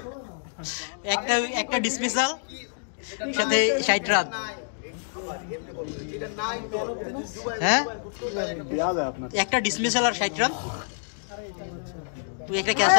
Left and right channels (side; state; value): right; silent; digital silence